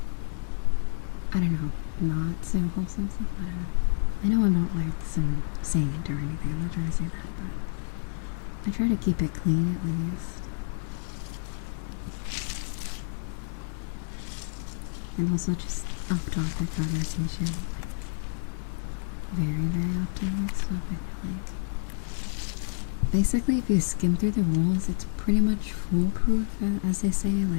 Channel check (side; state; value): right; silent; digital silence